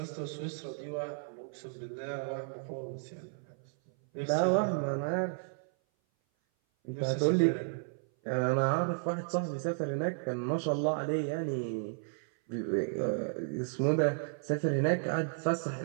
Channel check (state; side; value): silent; left; 56 dB below the other